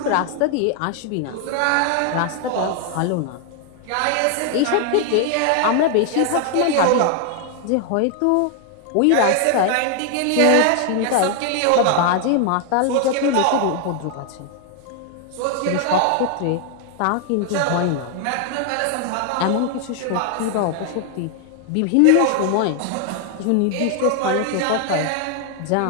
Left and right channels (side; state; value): both; different; correlation 0.00